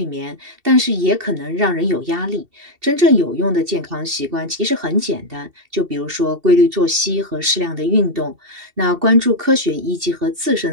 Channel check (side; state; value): left; late; 2.7 ms